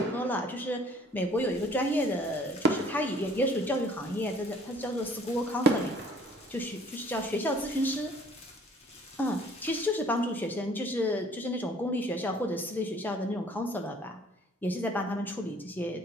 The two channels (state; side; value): normal; both; correlation 0.55